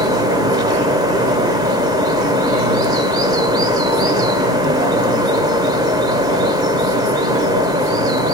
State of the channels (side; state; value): both; normal; correlation 0.38